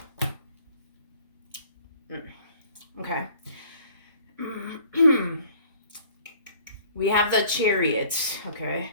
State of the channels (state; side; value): inverted; both; correlation -0.55